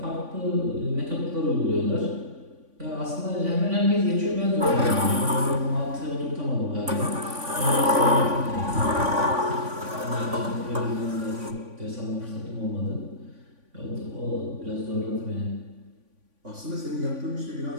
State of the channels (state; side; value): late; left; 3.5 ms